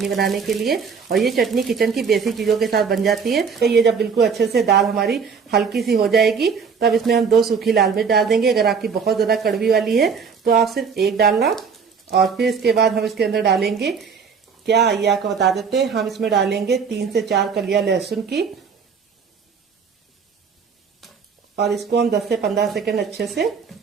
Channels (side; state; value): left; quieter; 5.9 dB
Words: बनाने के लिए। और ये चटनी किचन की बेसिक चीजों के साथ बन जाती है। तो ये जब बिल्कुल अच्छे से दाल हमारी हल्की सी हो जाएगी तब इसमें हम 2 सूखी लाल मिर्च डाल देंगे। अगर आपकी बहुत ज्यादा कड़वी वाली है तो आप सिर्फ 1 डालना। और फिर इसके बाद हम इसके अंदर डालेंगे, क्या ये आपको बता देते हैं, हम इसमें डालेंगे 3 से 4 कलियां लहसुन की और इसको हम 10 से 15 सेकंड अच्छे से